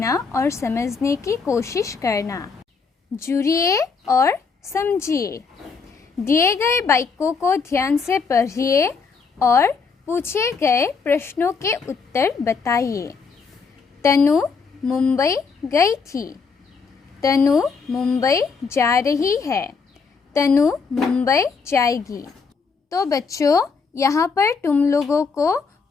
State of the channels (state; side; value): quieter; right; 5.1 dB